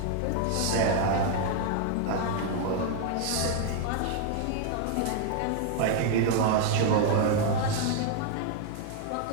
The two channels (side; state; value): both; different; correlation 0.00